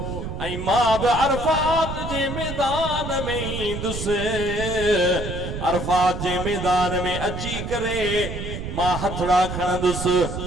ऐं मां बि अरफात जे मैदान में ईंदुसि। अरफात जे मैदान में अची करे मां हथड़ा खणंदुसि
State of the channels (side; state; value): right; noise; rumble, 6 dB below the sound